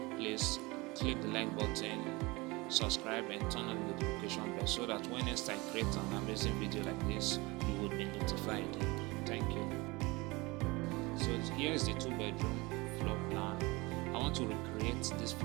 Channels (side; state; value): left; quieter; 23.8 dB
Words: please click the like button, subscribe and turn on the notification bell so that when next I create an amazing video like this, you will be notified. Thank you. So here is the 2-bedroom floor plan. I want to recreate this